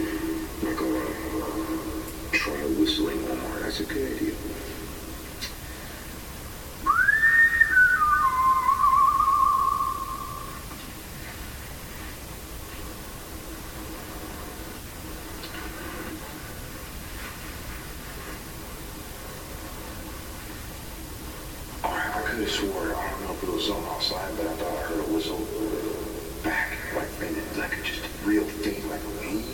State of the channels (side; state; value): both; identical; correlation 1.00